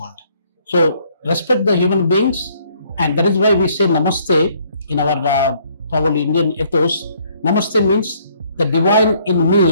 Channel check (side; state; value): both; inverted; correlation -0.65